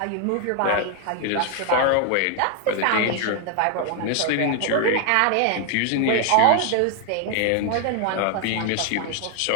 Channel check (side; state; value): both; different; correlation 0.00